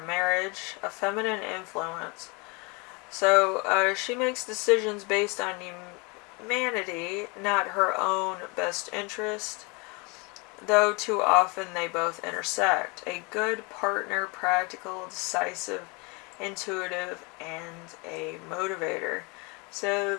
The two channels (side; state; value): right; quieter; 29.4 dB